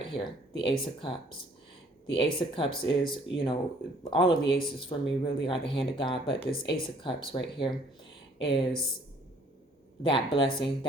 here, the Ace of Cups. The Ace of Cups is, all of the aces for me really are the hand of God, but this Ace of Cups right here is that blessing,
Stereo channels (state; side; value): normal; both; correlation 0.59